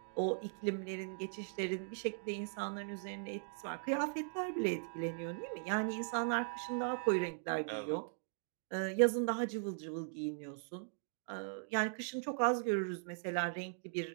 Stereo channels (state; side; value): silent; left; digital silence